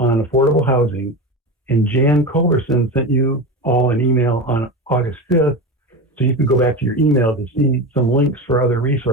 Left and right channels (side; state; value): both; normal; correlation 0.24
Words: affordable housing. And Jan Culverson sent you all an email on August 5th, so you can go back to your email to see some links for other